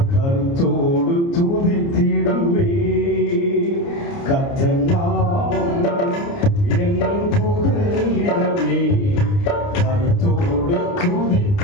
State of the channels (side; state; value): right; late; 29 ms